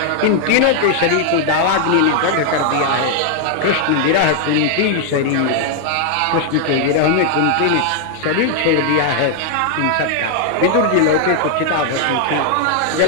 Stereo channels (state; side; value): different; both; correlation 0.00